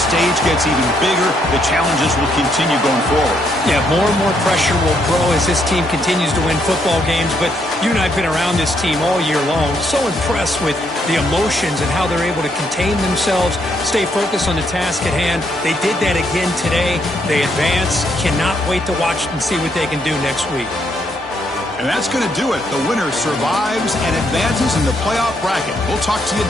gets even bigger. The challenges will continue going forward. Yeah, more and more pressure will grow as this team continues to win football games, but you and I have been around this team all year long. So impressed with the emotions and how they're able to contain themselves, stay focused on the task at hand. They did that again today. They advance. Cannot wait to watch and see what they can do next week. And that's going to do it. The winner survives and advances in the playoff bracket. We'll talk to you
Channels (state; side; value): normal; both; correlation 0.74